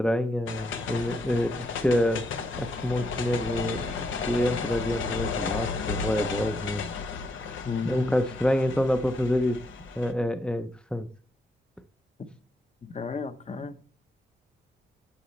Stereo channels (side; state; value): both; normal; correlation 0.78